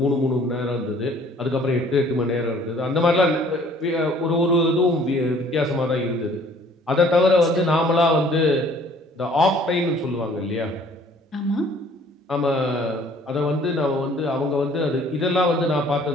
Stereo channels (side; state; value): both; normal; correlation 0.56